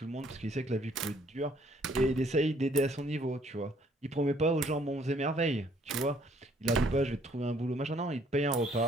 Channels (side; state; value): both; normal; correlation 0.63